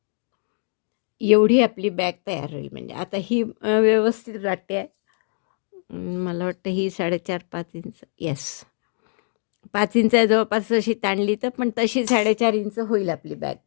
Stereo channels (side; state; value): right; silent; digital silence